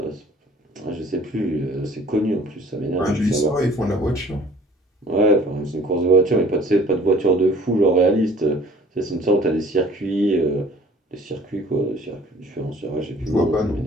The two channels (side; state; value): both; normal; correlation 0.51